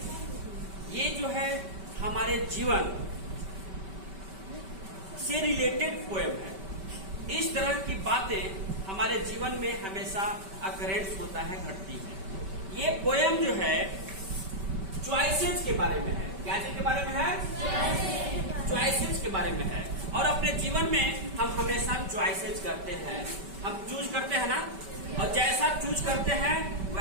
ये जो है हमारे जीवन से रिलेटेड पोएम है। इस तरह की बातें हमारे जीवन में हमेशा अकरेंस होता है, घटती है। ये पोएम जो है चॉइसेस के बारे में है। क्या चीज के बारे में है? चॉइसेस के बारे में है। और अपने जीवन में हम हमेशा चॉइसेस करते हैं, हम चूज करते हैं ना, और जैसा चूज करते हैं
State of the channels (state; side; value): late; left; 5.2 ms